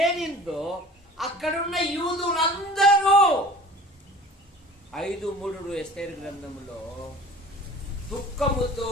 అక్కడున్న యూదులందరూ 5:3 ఎస్తేరు గ్రంథంలో దుఃఖముతో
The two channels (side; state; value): both; normal; correlation 0.44